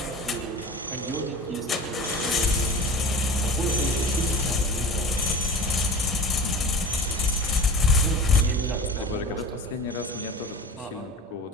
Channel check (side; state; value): both; normal; correlation 0.37